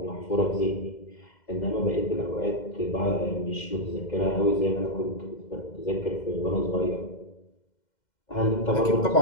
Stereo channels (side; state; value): right; late; 2.1 ms